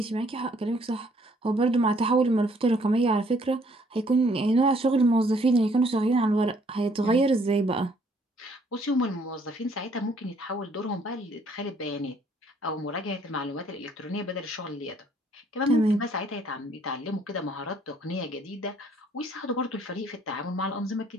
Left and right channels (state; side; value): normal; both; correlation 0.63